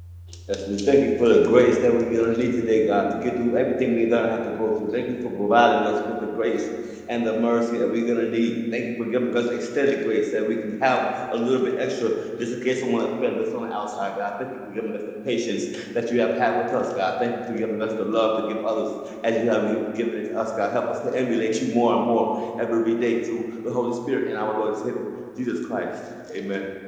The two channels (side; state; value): both; identical; correlation 1.00